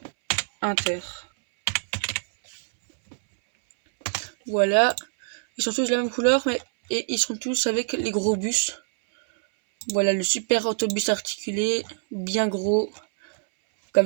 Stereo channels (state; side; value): silent; left; 62 dB below the other